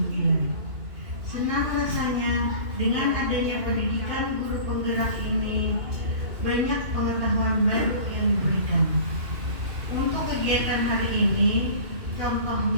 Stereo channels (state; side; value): late; left; 2.5 ms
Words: Senang rasanya dengan adanya pendidikan guru penggerak ini banyak pengetahuan baru yang diberikan. Untuk kegiatan hari ini,